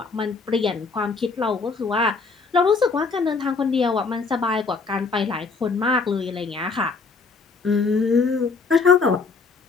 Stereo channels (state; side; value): quieter; right; 4.5 dB